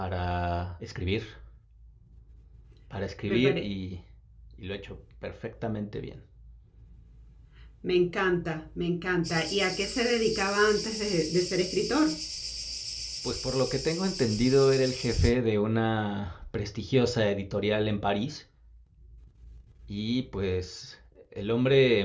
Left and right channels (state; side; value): identical; both; correlation 1.00